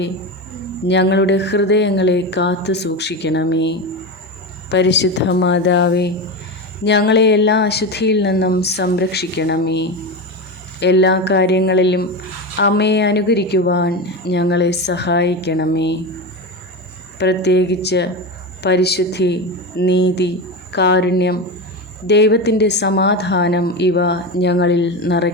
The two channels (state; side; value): normal; both; correlation 0.20